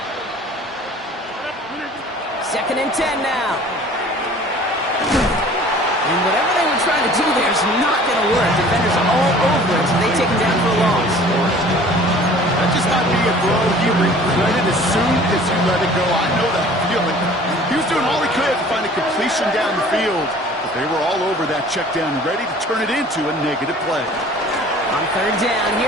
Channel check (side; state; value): both; normal; correlation 0.48